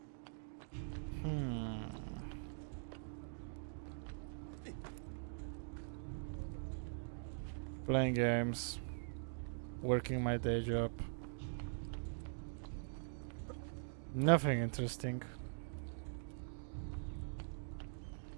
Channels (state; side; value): silent; left; digital silence